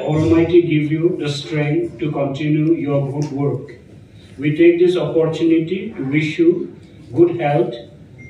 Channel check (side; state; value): both; identical; correlation 1.00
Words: Almighty give you the strength to continue your good work. We take this opportunity to wish you good health,